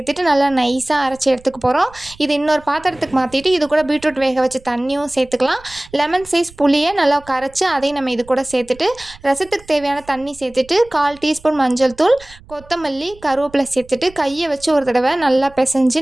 நல்லா நைஸாக அரைச்சி எடுத்துக்க போகிறோம். இது இன்னொரு பாத்திரத்துக்கு மாற்றிட்டு இது கூட பீட்ரூட் வேக வச்ச தண்ணியும் சேர்த்துக்கலாம். லெமன் சைஸ் புளியை நல்லா கரைச்சி அதையும் நம்ம இது கூட சேர்த்துட்டு, ரசத்துக்கு தேவையான தண்ணி சேர்த்துட்டு, 1/4 டீஸ்பூன் மஞ்சள் தூள், கொத்தமல்லி, கருவேப்பிலை சேர்த்துட்டு கையை வச்சு ஒரு தடவை நல்லா பிசைஞ்சு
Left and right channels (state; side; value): noise; right; rumble, 23 dB below the sound